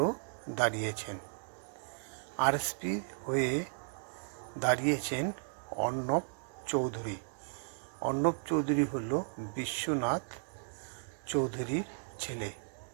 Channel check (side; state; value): left; silent; digital silence